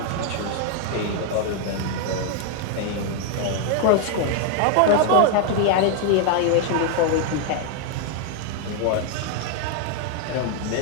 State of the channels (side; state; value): both; different; correlation 0.00